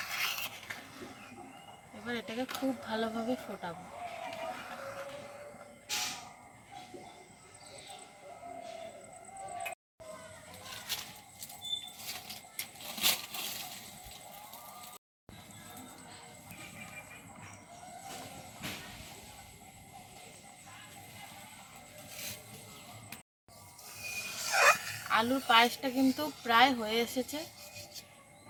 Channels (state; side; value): identical; both; correlation 1.00